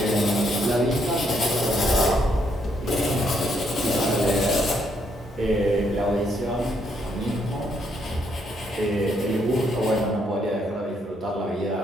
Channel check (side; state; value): both; normal; correlation 0.73